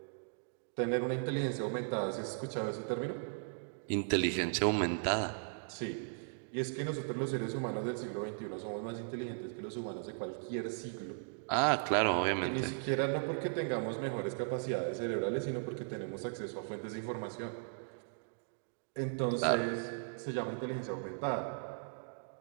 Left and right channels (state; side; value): silent; left; digital silence